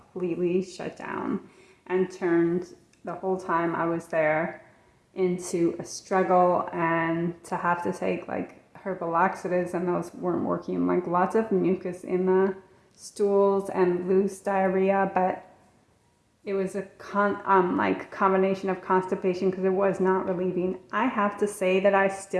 completely shut down and turned the whole time I was there into a struggle, and to have to take like herbal laxatives, and those weren't working. Like lots of mucus in the stools and loose diarrhea, but it was a combination of constipation because it was not relieving. I have to say that I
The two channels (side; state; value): both; identical; correlation 1.00